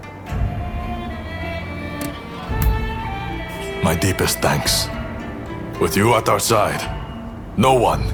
My deepest thanks. With you at our side, no one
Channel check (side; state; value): both; identical; correlation 1.00